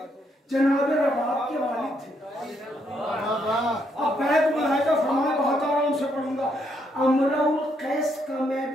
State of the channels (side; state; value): both; normal; correlation 0.75